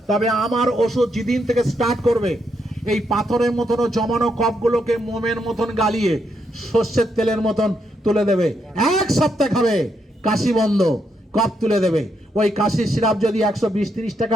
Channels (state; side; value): normal; both; correlation 0.78